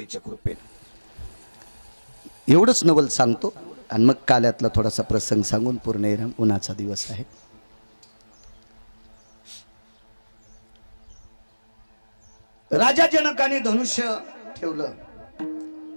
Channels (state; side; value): inverted; both; correlation -1.00